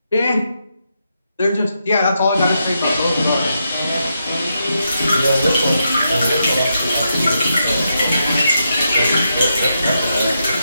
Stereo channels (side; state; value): both; inverted; correlation -0.83